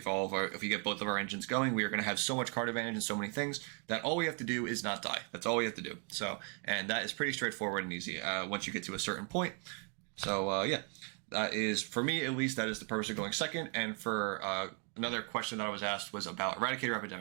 all of our, if we get both of our engines going, we are going to have so much card advantage and so many things that all we have to do is not die. That's all we have to do. So, and that is pretty straightforward and easy once you get to a certain point. So yeah, that is, for me at least, that is the purpose of going second. And for another question that I was asked was about Eradicator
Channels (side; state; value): left; quieter; 38.7 dB